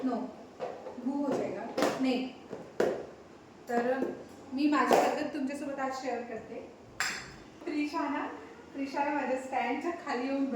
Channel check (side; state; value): both; identical; correlation 1.00